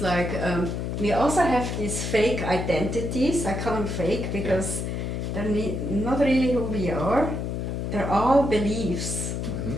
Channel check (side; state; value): left; noise; hum, 3 dB below the sound